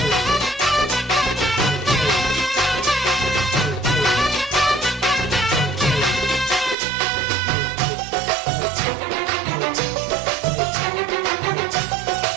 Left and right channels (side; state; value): left; drops out; at 6.8 s